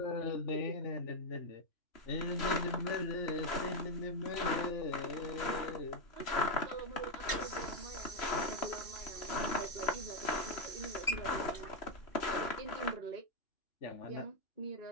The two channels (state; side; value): late; right; 3.0 ms